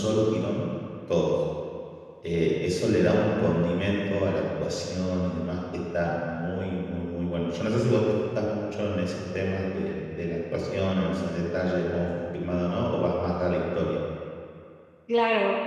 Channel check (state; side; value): identical; both; correlation 1.00